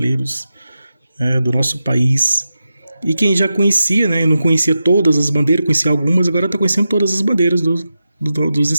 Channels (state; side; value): inverted; both; correlation -0.91